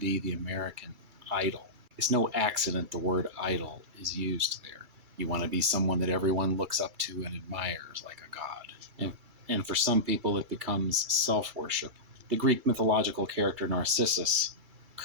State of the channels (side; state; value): left; late; 2.3 ms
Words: the American Idol. It's no accident the word idol is used there. You want to be someone that everyone looks up to and admires like a god. And for some people, it becomes self-worship. The Greek mythological character Narcissus